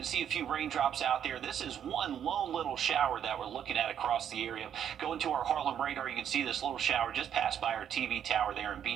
see a few raindrops out there. This is one lone little shower that we're looking at across the area. Going to our Harlem radar, you can see this little shower just passed by our TV tower there in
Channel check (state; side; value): quieter; left; 9.2 dB